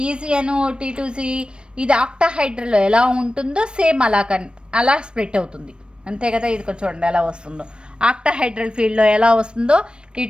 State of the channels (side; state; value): left; late; 0.055 ms